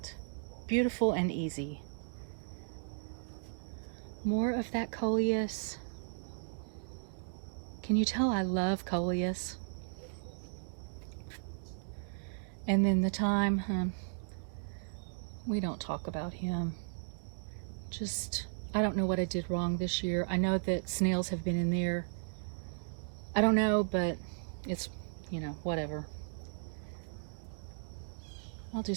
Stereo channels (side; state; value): left; silent; digital silence